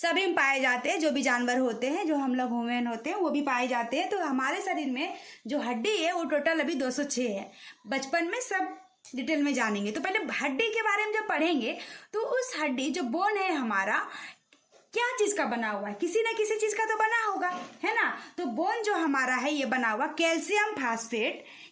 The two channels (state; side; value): identical; both; correlation 1.00